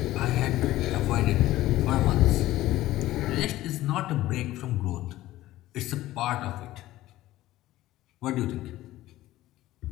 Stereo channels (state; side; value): quieter; right; 15.8 dB